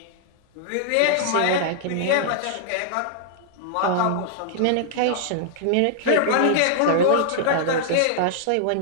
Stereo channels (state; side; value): different; both; correlation -0.01